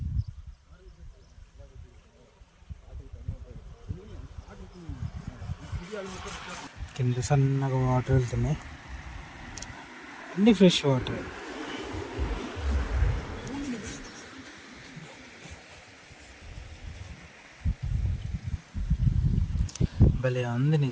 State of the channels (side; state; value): both; identical; correlation 1.00